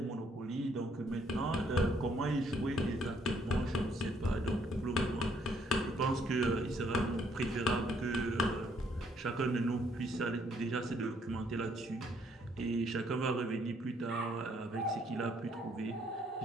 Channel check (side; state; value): both; normal; correlation 0.68